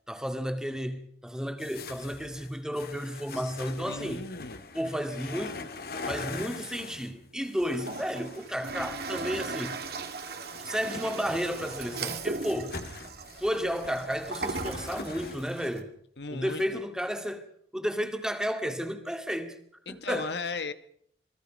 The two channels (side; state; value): both; normal; correlation 0.73